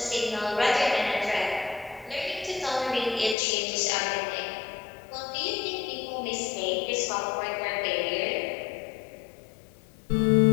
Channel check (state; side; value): drops out; right; at 3.4 s